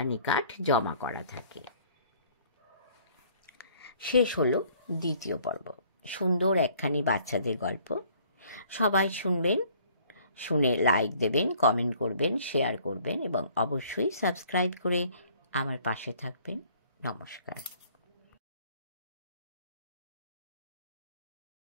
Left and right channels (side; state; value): both; inverted; correlation -0.58